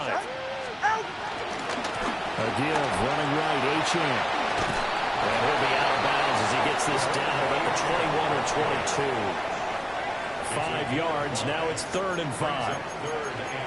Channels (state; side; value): identical; both; correlation 1.00